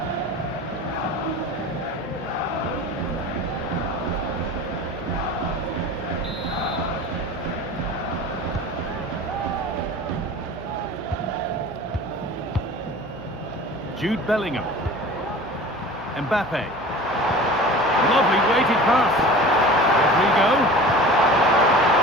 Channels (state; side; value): noise; left; hum, 17 dB below the sound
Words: Jude Bellingham. Mbappe. Lovely weighted pass. Rodrigo.